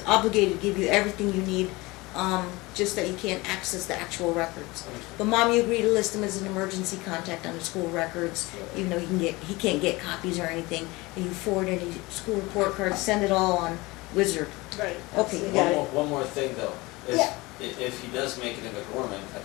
obligated to give you everything you need, just that you can't access the actual records. But Mom, you agree to list him as an emergency contact on the school records, even though he can't get copies or anything. And you forward any school report cards, send it all on Wizard. Right. Okay, you got it. One more thing, though. Is Yeah. If he does make it into Gorman at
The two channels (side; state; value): right; quieter; 22.5 dB